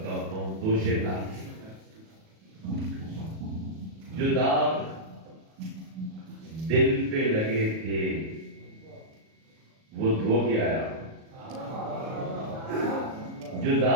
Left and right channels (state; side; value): late; left; 37 ms